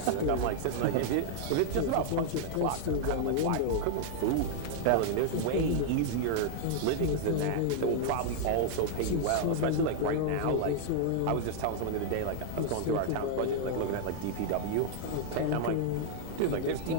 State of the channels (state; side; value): different; both; correlation 0.00